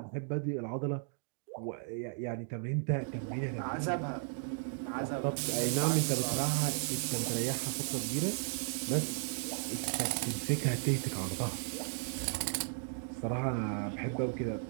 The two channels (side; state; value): left; silent; 54 dB below the other